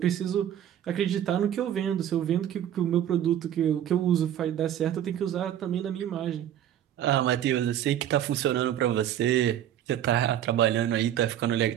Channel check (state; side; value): quieter; left; 10.8 dB